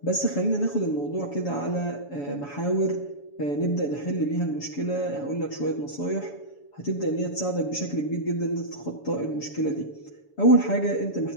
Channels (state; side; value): late; right; 7.1 ms